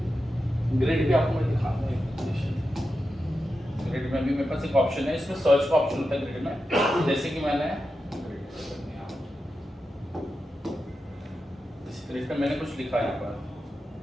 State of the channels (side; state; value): both; normal; correlation 0.90